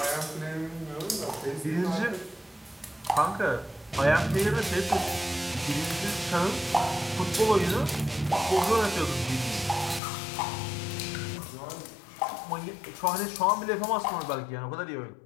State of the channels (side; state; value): right; drops out; at 10.0 s